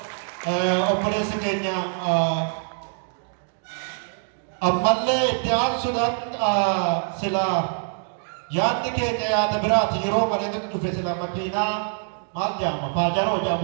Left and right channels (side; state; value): left; silent; 58 dB below the other